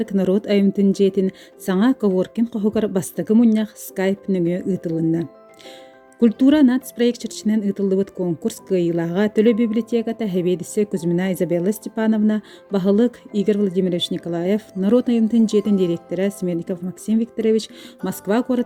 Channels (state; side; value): identical; both; correlation 1.00